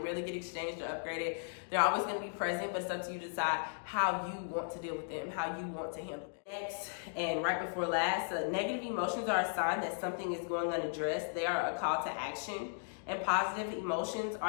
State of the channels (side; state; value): right; silent; digital silence